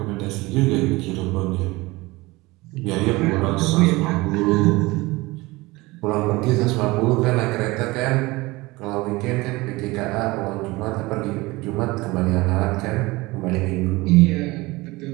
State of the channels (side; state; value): left; quieter; 21.6 dB